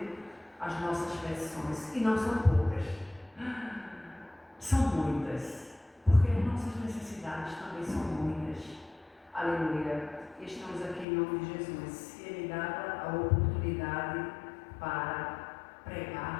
as nossas petições. E não são poucas. São muitas, porque as nossas necessidades também são muitas. Aleluia! E estamos aqui em nome de Jesus. E Ele dá a oportunidade para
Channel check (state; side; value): drops out; right; at 11.1 s